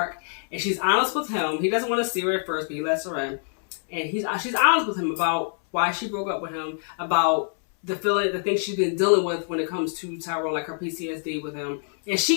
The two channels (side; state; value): right; silent; 61 dB below the other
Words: and she's honest with him. He doesn't want to see her at first, but he lets her in, and she's honest with him about why she broke up with him, about the things she's been dealing with when it comes to Tyrone, like her PTSD with him. And